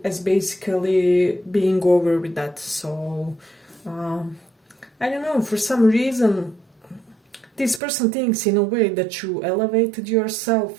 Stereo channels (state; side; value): drops out; left; at 7.8 s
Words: as basically being over with that. So I don't know, for some reason this person thinks in a way that you elevated